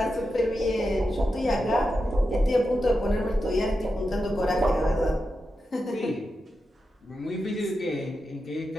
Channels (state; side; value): normal; both; correlation 0.89